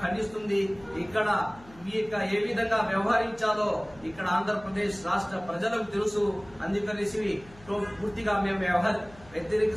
ఖండిస్తుంది. ఇక్కడ ఏ విధంగా వ్యవహరించాలో ఇక్కడ ఆంధ్రప్రదేశ్ రాష్ట్ర ప్రజలకు తెలుసు. అందుకనేసి పూర్తిగా మేము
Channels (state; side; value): noise; left; hum, 23 dB below the sound